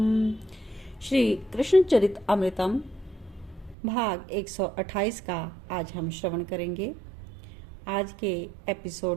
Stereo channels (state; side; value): drops out; left; at 3.8 s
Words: श्री कृष्ण चरित अमृतम भाग 128 का आज हम श्रवण करेंगे। आज के